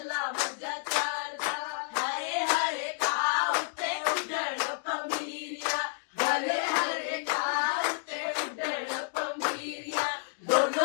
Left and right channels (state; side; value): silent; right; digital silence